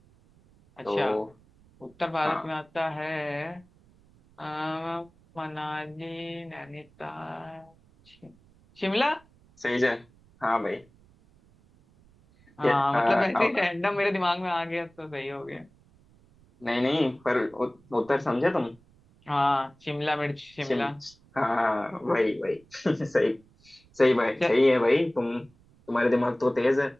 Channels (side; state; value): right; noise; rumble, 29 dB below the sound